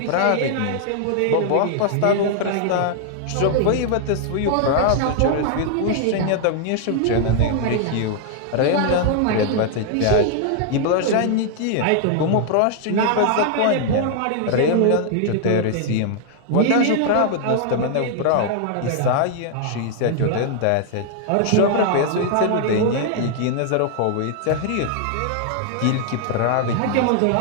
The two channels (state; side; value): different; both; correlation 0.00